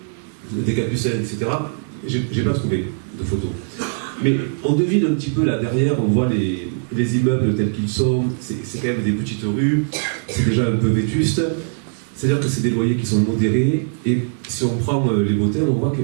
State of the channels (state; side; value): silent; left; 55 dB below the other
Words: des Capucins, etc., j'ai pas trouvé de photos. Mais on devine un petit peu là derrière, on voit les immeubles tels qu'ils sont, c'est quand même des petites rues, c'est déjà un peu vétuste, c'est-à-dire que c'est des loyers qui sont modérés, et si on prend les hôtels, on voit